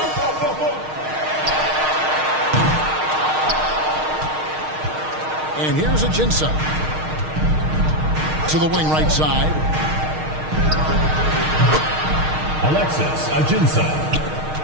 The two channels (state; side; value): late; left; 6.5 ms